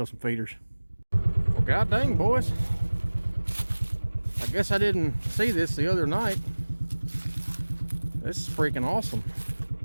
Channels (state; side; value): inverted; both; correlation -1.00